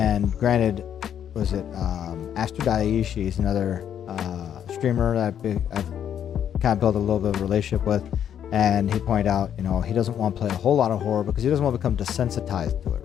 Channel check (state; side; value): quieter; right; 9.4 dB